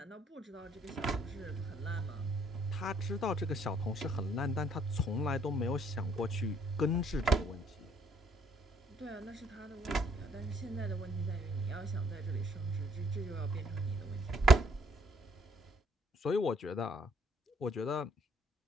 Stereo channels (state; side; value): normal; both; correlation 0.65